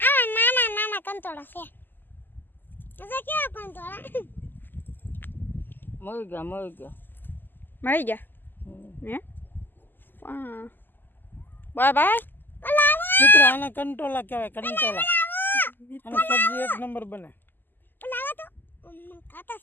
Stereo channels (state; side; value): late; right; 0.092 ms